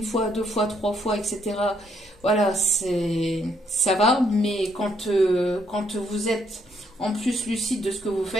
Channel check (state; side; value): normal; both; correlation 0.72